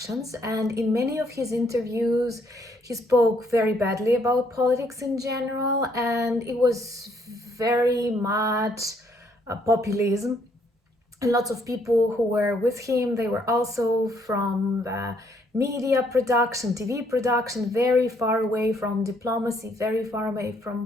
and in many of his interviews he spoke very badly about politics in general, and it was very much populism. And lots of people who were with him, they were also from the media production, TV production, very far away from diplomacy, very far away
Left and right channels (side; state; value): both; normal; correlation 0.68